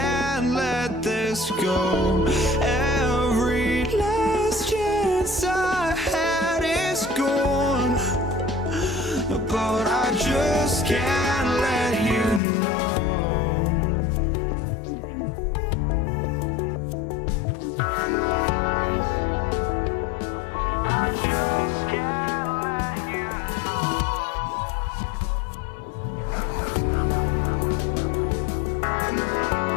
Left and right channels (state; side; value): drops out; right; at 12.4 s